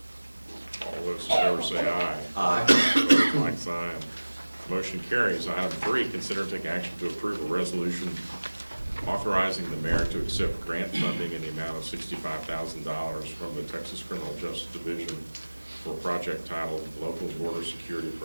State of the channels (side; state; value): both; inverted; correlation -1.00